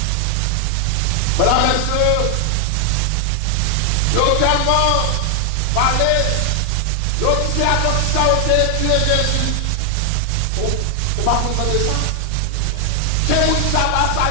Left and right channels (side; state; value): both; different; correlation 0.00